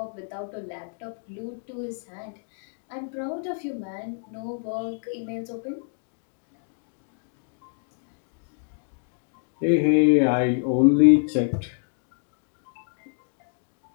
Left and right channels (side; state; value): right; silent; digital silence